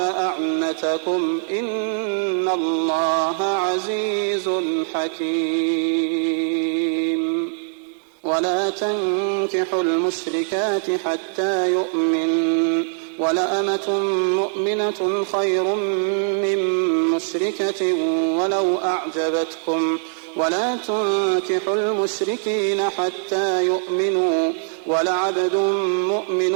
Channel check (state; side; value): silent; left; digital silence